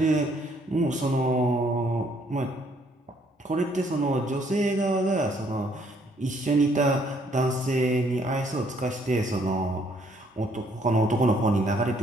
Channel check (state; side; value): normal; both; correlation 0.66